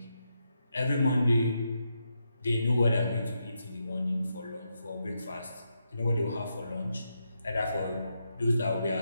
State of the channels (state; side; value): inverted; both; correlation -0.83